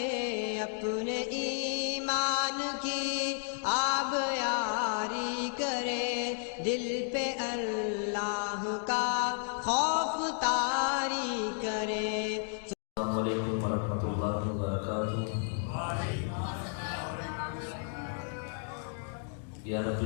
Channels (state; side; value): silent; right; 56 dB below the other